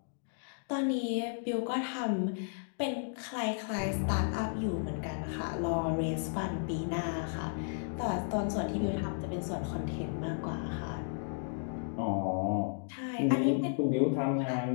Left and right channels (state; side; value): silent; right; digital silence